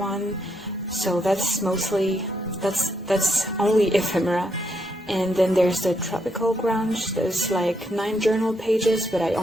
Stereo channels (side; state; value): both; normal; correlation 0.77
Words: So that's only ephemera. And then there's the tropical grunge. There's like 9 journal pages, but I